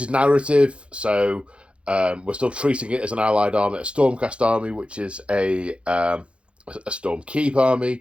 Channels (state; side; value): late; left; 0.059 ms